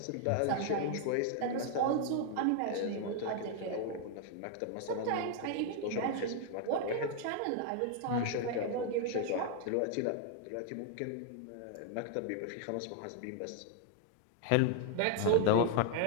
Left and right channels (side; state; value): both; different; correlation 0.00